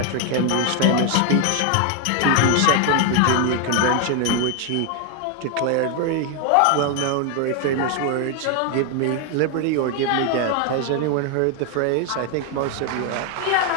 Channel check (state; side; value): different; both; correlation 0.00